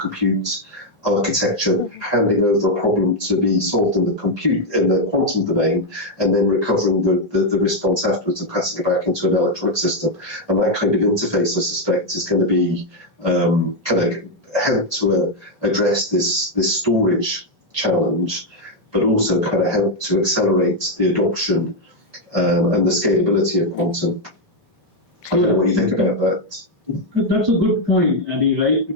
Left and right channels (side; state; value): both; normal; correlation 0.01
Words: architecture handing over a problem to be solved in the quantum domain, and then recovering the response afterwards and passing it back into an electronic system. And that kind of interface, I suspect, is going to be kind of help to address this storage challenge, but also kind of help to accelerate the adoption and the scalability of quantum. I don't know what you think about that. That's a good point, Andy, right? I